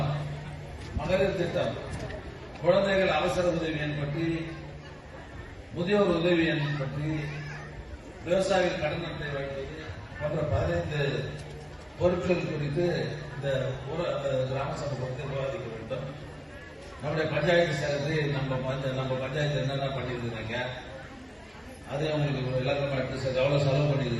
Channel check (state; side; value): identical; both; correlation 1.00